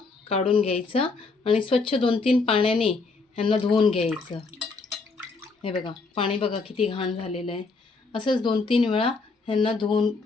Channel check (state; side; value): quieter; right; 4.1 dB